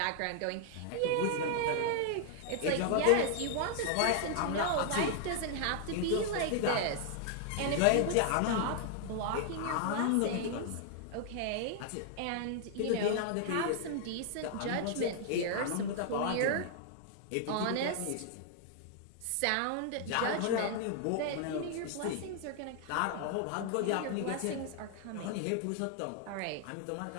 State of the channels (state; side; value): different; both; correlation 0.00